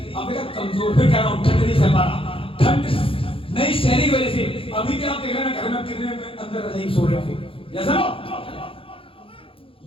अब मेरा कमजोर। फिर कह रहा हूं, ठंड नहीं सह पा रहा, ठंड नहीं सहने की वजह से। अभी भी आप देख रहे हैं घर में कितने अंदर नहीं सो रहे थे, जैसा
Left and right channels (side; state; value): right; late; 0.26 ms